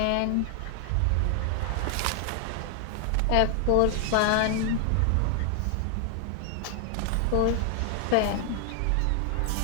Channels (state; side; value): different; both; correlation 0.00